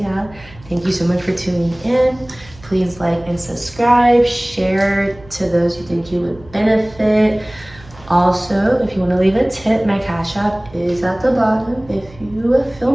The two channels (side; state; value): right; noise; hum, 22 dB below the sound